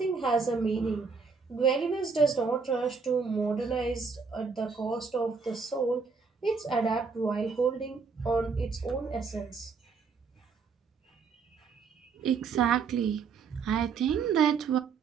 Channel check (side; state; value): left; quieter; 5.2 dB